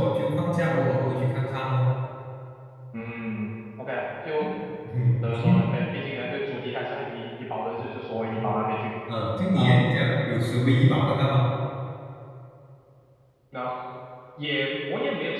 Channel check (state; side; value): identical; both; correlation 1.00